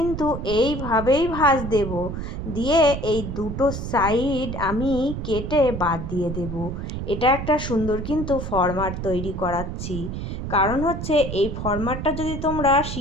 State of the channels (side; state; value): right; noise; rumble, 5 dB below the sound